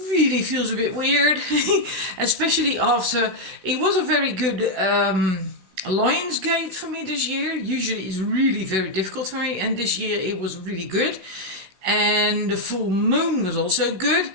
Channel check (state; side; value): late; left; 16 ms